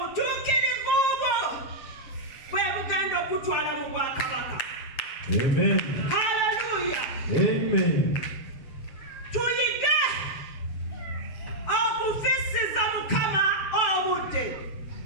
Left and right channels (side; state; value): right; late; 7.5 ms